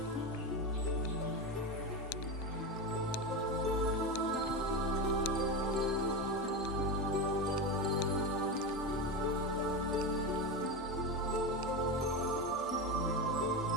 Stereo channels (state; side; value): normal; both; correlation 0.18